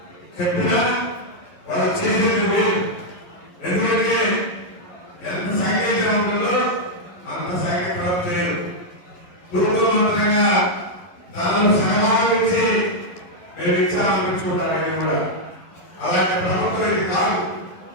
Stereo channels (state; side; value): late; right; 11 ms